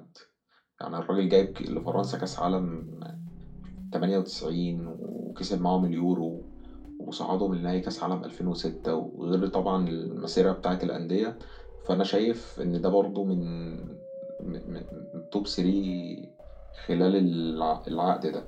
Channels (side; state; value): both; identical; correlation 1.00